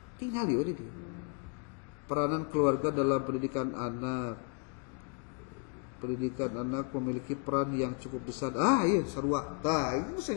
tinggal ya ini. Peranan keluarga dalam pendidikan anak. Pendidikan anak memiliki peran yang cukup besar. Iya sarua. Itu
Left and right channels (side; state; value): right; quieter; 35.0 dB